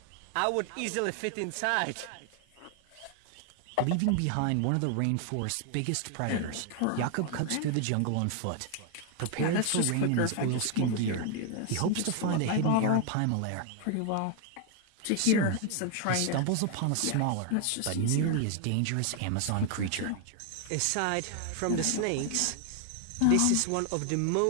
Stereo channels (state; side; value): different; both; correlation 0.00